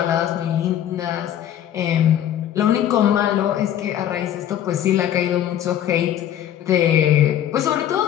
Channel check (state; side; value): quieter; right; 10.9 dB